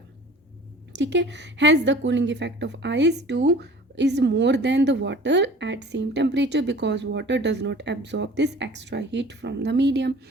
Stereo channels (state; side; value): normal; both; correlation 0.45